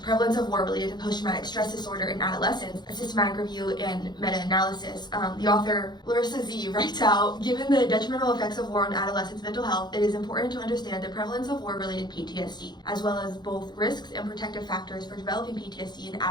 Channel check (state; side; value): late; right; 0.21 ms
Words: "Prevalence of War Related to Post-Traumatic Stress Disorder in Adolescents: A Systematic Review and Meta-Analysis," the author Larissa Z writes out, "Given the detrimental effects of war on adolescents' mental health, it is important to understand the prevalence of war-related PTSD, as well as both risks and protective factors for developing PTSD in